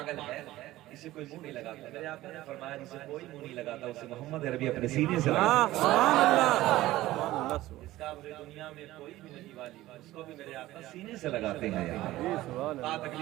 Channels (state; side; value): quieter; left; 16.3 dB